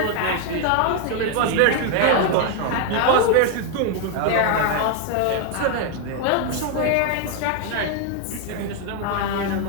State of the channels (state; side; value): different; both; correlation 0.01